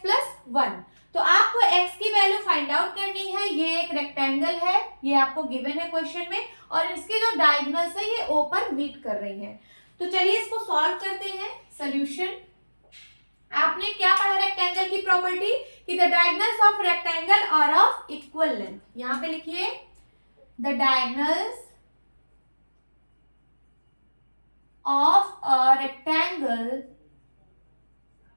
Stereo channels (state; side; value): inverted; both; correlation -1.00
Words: plus 1। तो आपको x की वैल्यू फाइंड आउट करनी है। ये एक रेक्टेंगल है, ये आपको गिवन है क्वेश्चन में, और इसकी जो डायगोनल्स है ये O पर मीट कर रही है। तो चलिए इसको सॉल्व करते हैं। सॉल्यूशन, आपने क्या पढ़ा रेक्टेंगल की प्रॉपर्टी कि the diagonals of rectangle are of equal length. यहां पे लिखिए the diagonals of a rectangle